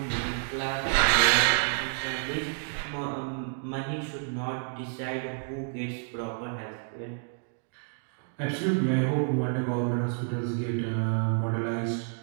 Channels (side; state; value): left; silent; 58 dB below the other